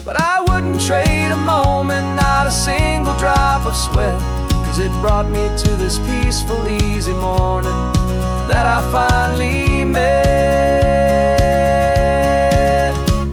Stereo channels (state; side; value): identical; both; correlation 1.00